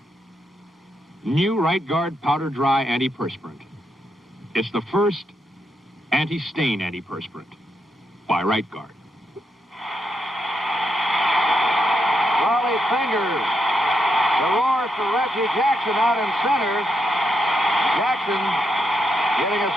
New Right Guard Powder Dry Antiperspirant. It's the first anti-stain antiperspirant by Right Guard. Raleigh Fingers. The roar for Reggie Jackson out in center. Jackson getting a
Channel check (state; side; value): normal; both; correlation 0.81